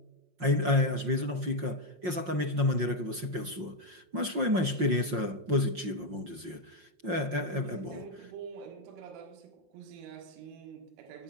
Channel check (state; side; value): late; left; 5.6 ms